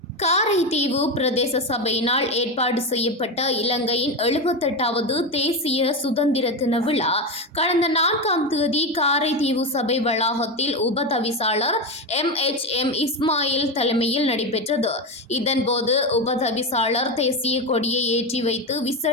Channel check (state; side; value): normal; both; correlation 0.16